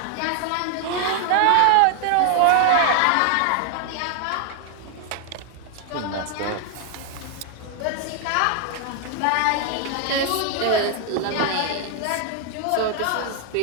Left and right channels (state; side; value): different; both; correlation 0.00